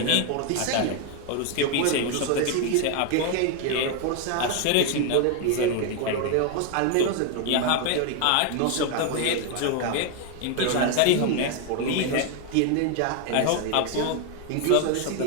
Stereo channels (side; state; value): both; different; correlation 0.01